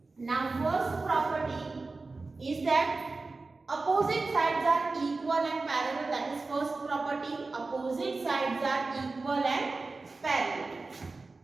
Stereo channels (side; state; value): left; quieter; 3.7 dB